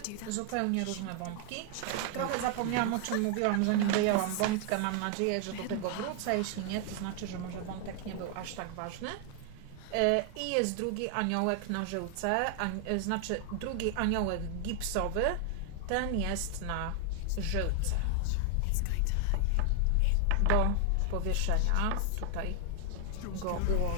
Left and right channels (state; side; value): different; both; correlation 0.00